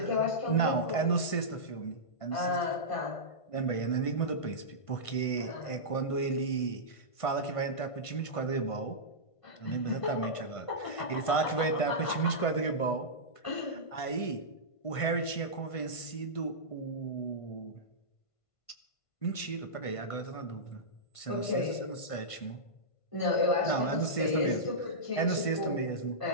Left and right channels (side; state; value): right; late; 1.5 ms